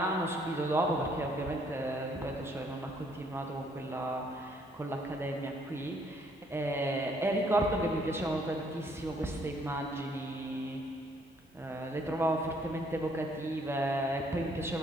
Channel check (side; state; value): both; normal; correlation 0.66